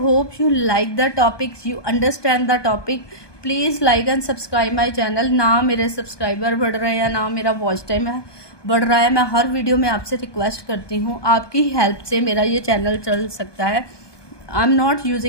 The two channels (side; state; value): right; late; 1.2 ms